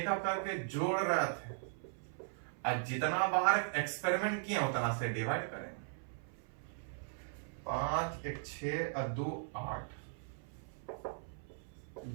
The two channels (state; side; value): silent; left; 52 dB below the other